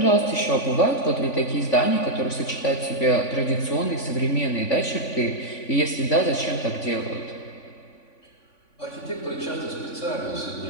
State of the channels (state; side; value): late; right; 3.5 ms